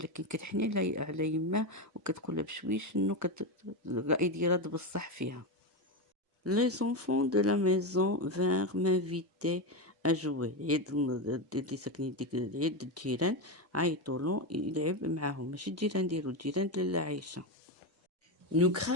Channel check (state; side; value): normal; both; correlation 0.13